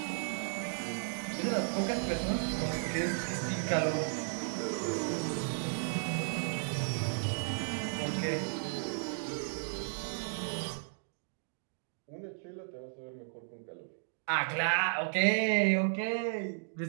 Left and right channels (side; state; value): left; silent; digital silence